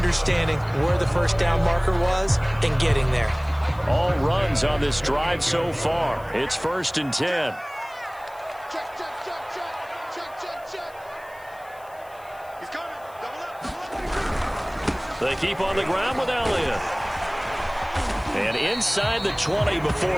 where the 1st down marker was and getting there. All runs on this drive so far. It's 1st and 10. Check, check, check, check. Check, check, check. He's coming. Double up. They keep on the ground with Elliott. And inside the 20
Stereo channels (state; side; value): noise; left; hiss, 26 dB below the sound